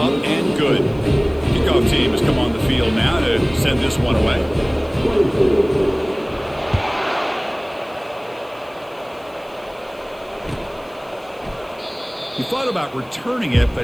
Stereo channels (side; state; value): left; noise; hiss, 29 dB below the sound